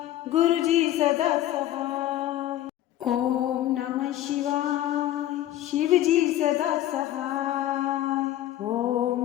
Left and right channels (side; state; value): right; quieter; 13.4 dB